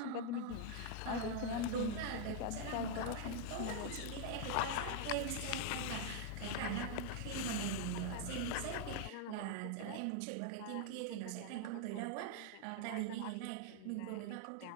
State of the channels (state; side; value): different; both; correlation 0.00